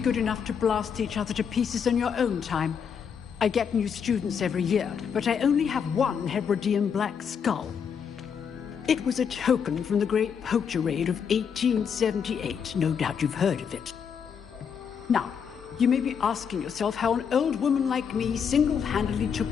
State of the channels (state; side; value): quieter; right; 7.1 dB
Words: enough to blast each other to pieces in your own time. I get new students every year, but I only have one Hebridean black skull. It was a token from the Great Poacher Raid of 1878. No doubt you've heard of it. Now, you may be asking yourself how an old woman like me single-handedly